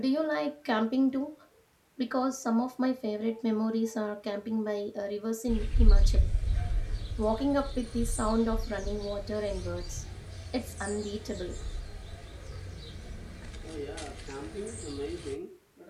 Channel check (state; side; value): identical; both; correlation 1.00